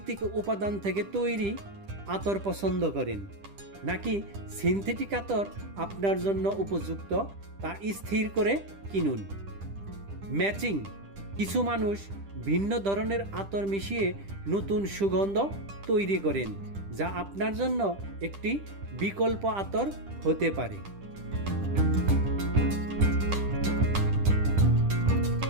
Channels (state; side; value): late; left; 10 ms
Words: উপাদান থেকে তৈরি আতর পছন্দ করেন নাকি সিনথেটিক আতর আপনার জন্য উপযুক্ত, তা স্থির করে কিনুন। ম্যাচিং, কিছু মানুষ ভিন্ন ধরনের আতর মিশিয়ে নতুন সুগন্ধ তৈরি করেন, যা আপনার জন্য একটি বিকল্প আতর হতে পারে।